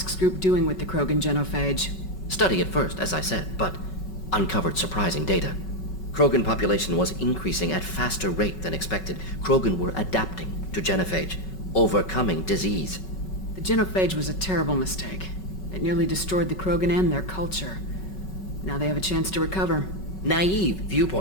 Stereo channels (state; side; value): late; right; 5.3 ms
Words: Group doing with the Krogan genophage? Study at first, as I said, but uncovered surprising data. Krogan population was increasing at faster rate than expected. Krogan were adapting to genophage, overcoming disease. The genophage was a terrible mistake. It nearly destroyed the Krogan and their culture. Now they have a chance to recover. Naive